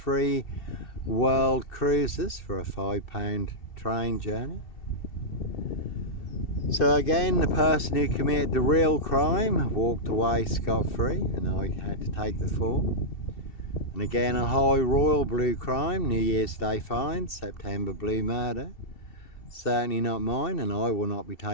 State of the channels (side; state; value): right; late; 2.7 ms